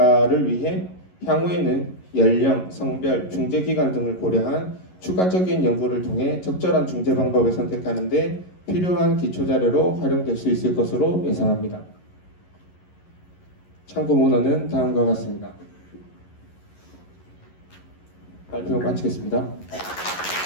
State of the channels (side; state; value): right; late; 11 ms